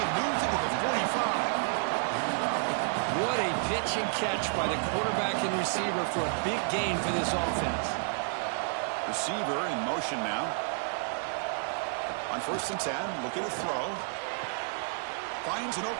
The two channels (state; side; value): silent; left; 57 dB below the other